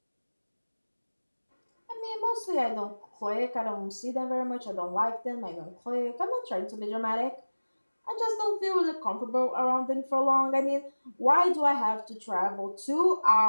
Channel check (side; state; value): both; inverted; correlation -1.00